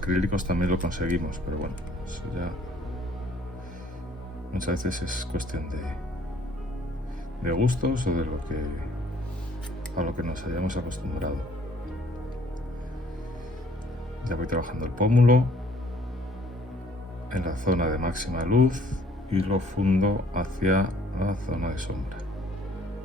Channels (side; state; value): both; normal; correlation 0.59